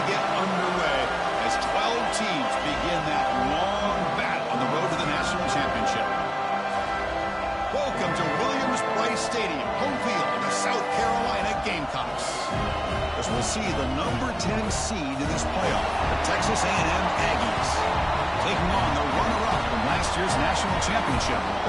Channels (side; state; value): both; identical; correlation 1.00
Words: get underway as 12 teams begin that long battle on the road to the national championship. Welcome to Williams-Brice Stadium, home field of the South Carolina Gamecocks. As we'll see the number 10 seed in this playoff, the Texas A&M Aggies, taking on the runner-up from last year's national championship,